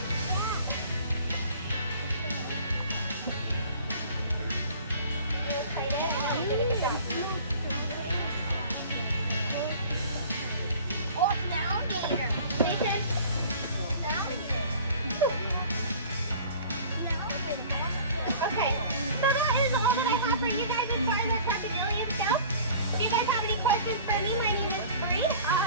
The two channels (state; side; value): inverted; both; correlation -0.46